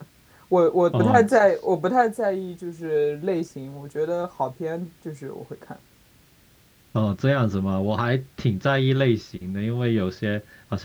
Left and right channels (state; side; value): identical; both; correlation 1.00